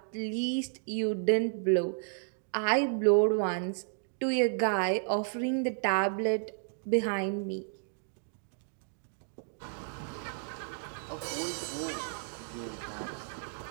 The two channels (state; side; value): silent; left; digital silence